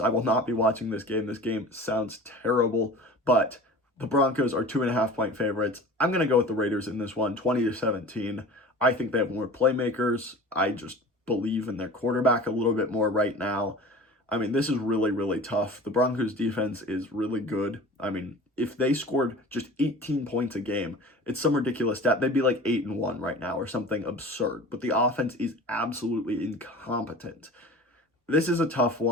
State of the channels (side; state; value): both; normal; correlation 0.39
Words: will not be watching this game. This game sounds terrible, but the Broncos are 2.5-point favorites. I'm going to go with the Raiders in this one, 20-17. I think they have more playmakers. I just believe in their quarterback a little bit more right now. I mean, this is really, really tough. The Broncos defense is really good. I mean, if they scored just 18 points a game, it's some ridiculous stat. They'd be like 8-1 right now or something absurd. But the offense is absolutely incompetent. This is a tough